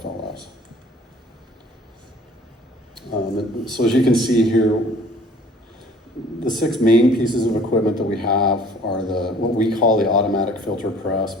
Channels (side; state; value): both; normal; correlation 0.52